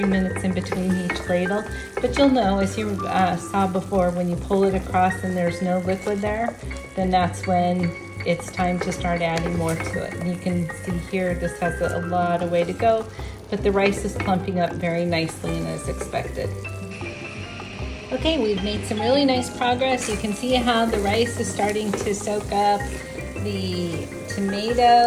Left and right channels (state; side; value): identical; both; correlation 1.00